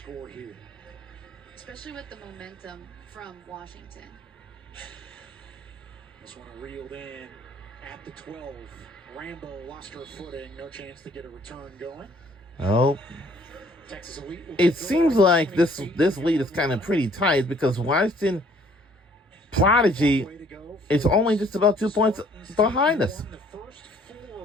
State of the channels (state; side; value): normal; both; correlation 0.59